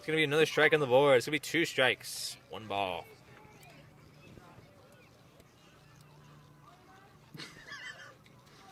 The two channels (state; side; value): identical; both; correlation 1.00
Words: going to be another strike on the board. It's going to be 2 strikes, 1 ball.